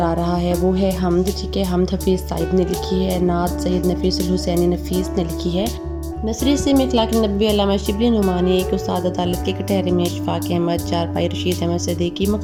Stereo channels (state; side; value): identical; both; correlation 1.00